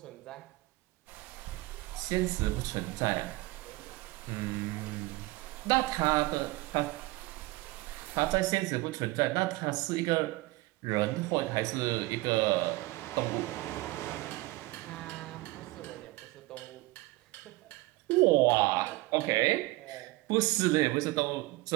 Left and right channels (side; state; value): left; quieter; 20.8 dB